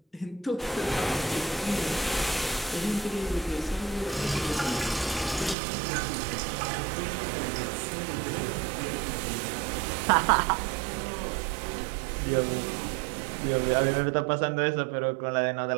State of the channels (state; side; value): drops out; left; at 5.6 s